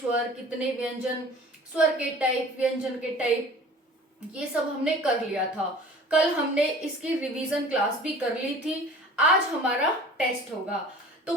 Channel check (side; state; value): both; normal; correlation 0.44